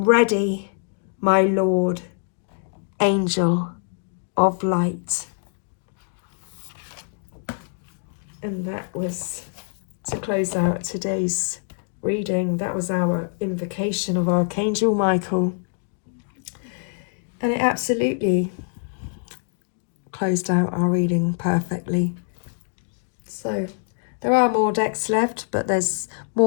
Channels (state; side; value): silent; right; 56 dB below the other